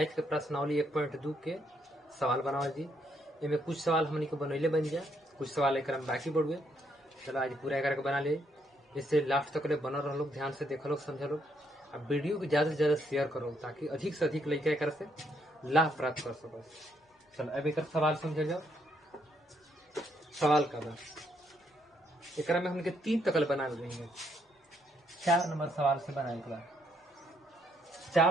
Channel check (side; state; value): both; normal; correlation 0.73